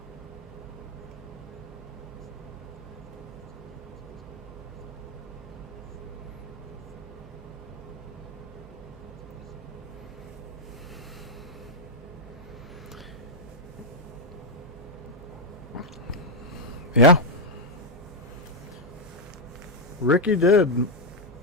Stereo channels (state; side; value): normal; both; correlation 0.00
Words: Yeah. Ricky did.